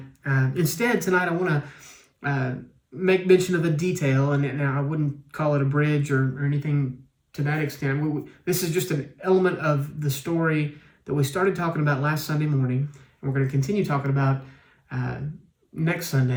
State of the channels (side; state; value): both; identical; correlation 1.00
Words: Instead, tonight I want to make mention of a detail, and I wouldn't call it a bridge or anything to that extent. This is just an element of the story that we started talking about last Sunday morning. We're going to continue talking about next